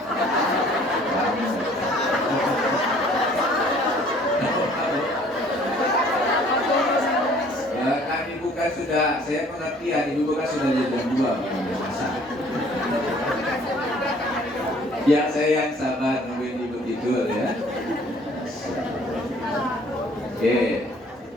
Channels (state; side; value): normal; both; correlation 0.56